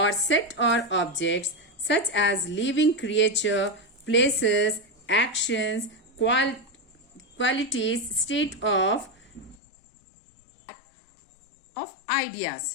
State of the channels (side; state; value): right; drops out; at 9.6 s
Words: set or objects such as living creature, places, actions, qualities, state of